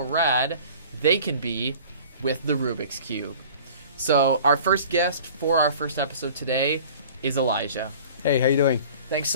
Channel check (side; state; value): both; inverted; correlation -0.45